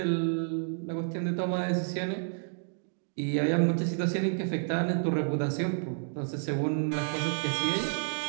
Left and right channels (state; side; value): silent; left; digital silence